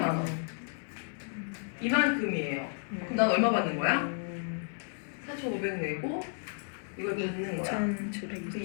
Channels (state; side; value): silent; right; 56 dB below the other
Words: 원. 이만큼이에요. 그럼 난 얼마 받는 거야? 4,500 내고 이걸 받는 거야. 2,700. 그